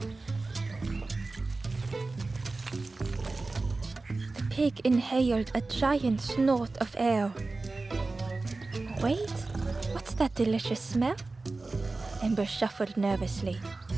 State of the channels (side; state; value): left; quieter; 3.5 dB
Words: The pig inhaled a giant snort of air. Wait, what's that delicious smell? Ember shuffled nervously.